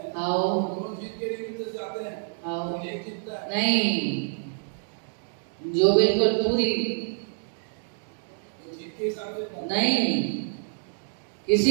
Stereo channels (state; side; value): silent; left; digital silence